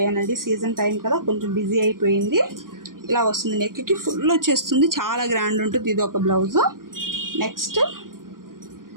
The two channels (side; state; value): left; late; 0.91 ms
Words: సీజన్ టైం కదా, కొంచెం బిజీ అయిపోయింది. ఇలా వస్తుంది, నెక్కి ఫుల్ వచ్చేస్తుంది, చాలా గ్రాండ్ ఉంటుంది. ఇది ఒక బ్లౌజు. నెక్స్ట్